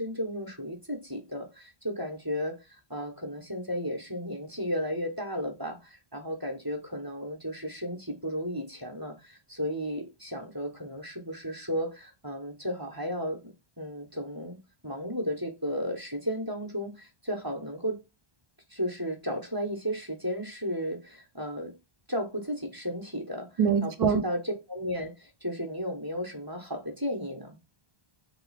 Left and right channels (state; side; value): late; left; 1.0 ms